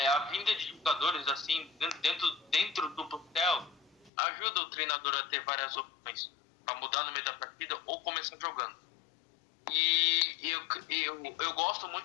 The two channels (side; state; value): right; drops out; at 4.1 s